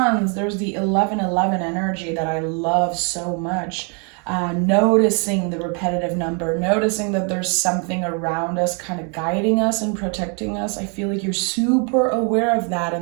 there's the 1111 energy that I love so much. Noticing the repetitive number, noticing that there's something around us kind of guiding us and protecting us. I feel like you're super aware of that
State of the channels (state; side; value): quieter; left; 37.9 dB